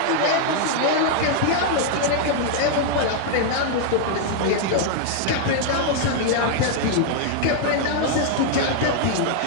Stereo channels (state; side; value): different; both; correlation 0.00